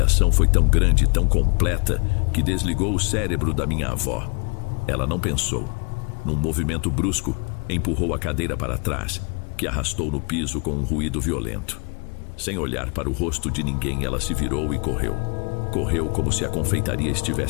foi tão grande, tão completa, que desligou o cérebro da minha avó. Ela não pensou. Num movimento brusco, empurrou a cadeira para trás, que arrastou no piso com um ruído violento. Sem olhar para o rosto de ninguém, ela se virou e correu. Correu como se a confeitaria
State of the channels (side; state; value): right; quieter; 34.4 dB